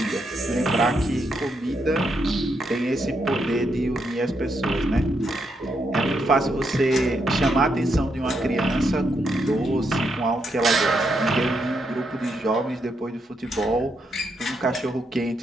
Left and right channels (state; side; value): normal; both; correlation 0.79